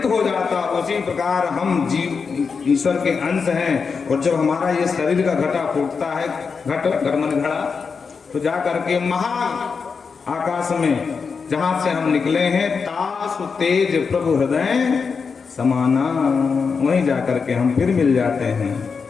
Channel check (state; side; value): quieter; right; 5.4 dB